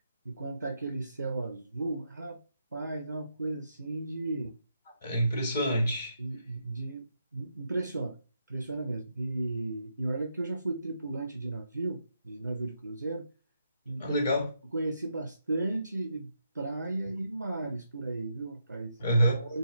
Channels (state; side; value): inverted; both; correlation -0.81